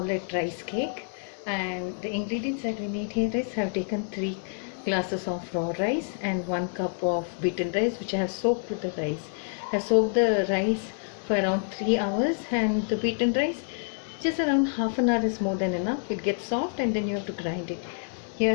it rice cake. And the ingredients that we need here is, I have taken 3 glasses of raw rice and 1 cup of beaten rice, which I have soaked with the rice. I have soaked the rice for around 3 hours, and the beaten rice just around half an hour is more than enough. It gets soft and then you have to grind it. Here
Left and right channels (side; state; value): right; silent; digital silence